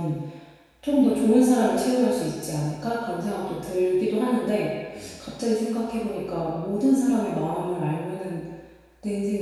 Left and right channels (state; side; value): identical; both; correlation 1.00